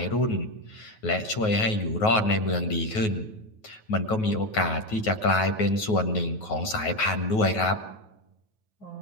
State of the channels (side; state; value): right; late; 9.3 ms